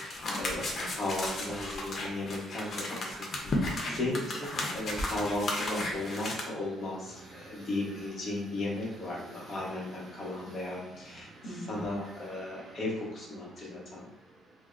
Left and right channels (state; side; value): normal; both; correlation 0.71